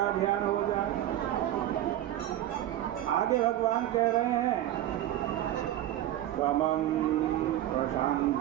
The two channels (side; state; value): left; quieter; 13.0 dB